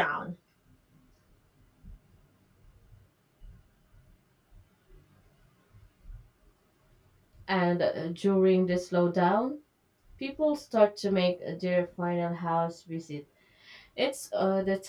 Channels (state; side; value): identical; both; correlation 1.00